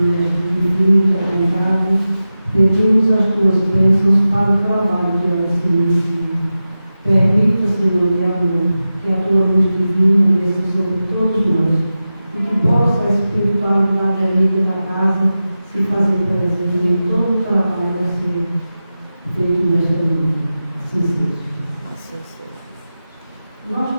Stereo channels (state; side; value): inverted; both; correlation -0.94